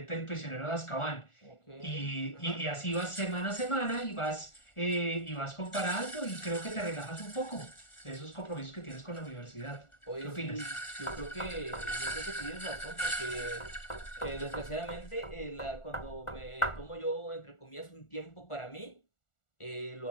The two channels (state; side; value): late; right; 1.4 ms